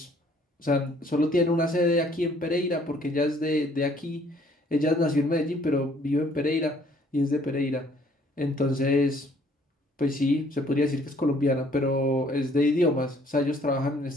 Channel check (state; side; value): normal; both; correlation 0.61